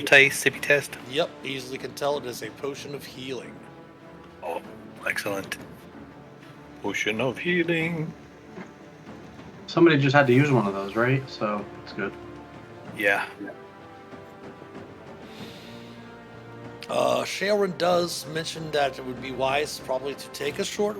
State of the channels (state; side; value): identical; both; correlation 1.00